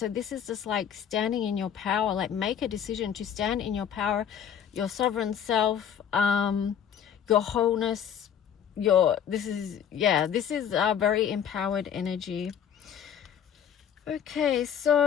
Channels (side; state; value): right; quieter; 8.8 dB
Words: this is just like standing in your power. Like, make a decision to stand in your power, your sovereign self, your wholeness, this is a very empowered energy. Okay,